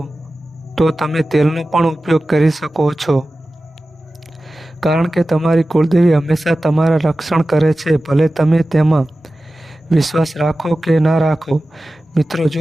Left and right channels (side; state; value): both; normal; correlation 0.95